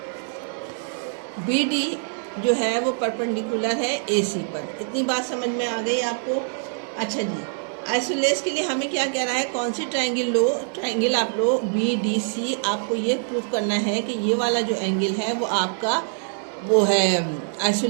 BD जो है वो परपेंडिकुलर है AC पर। इतनी बात समझ में आ गई आपको। अच्छा जी, आइसोलेस के लिए हमें क्या कह रहा है, कौन सी ट्राइंगल लो, ट्राइंगल आप लो BDC। आपको ये प्रूफ करना है कि ये वाला जो एंगल है वो आपका वो है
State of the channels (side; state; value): left; silent; 62 dB below the other